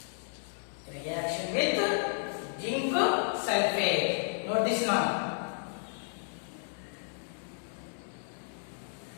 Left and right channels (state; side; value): silent; right; digital silence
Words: Reaction with zinc sulfate. Note this now.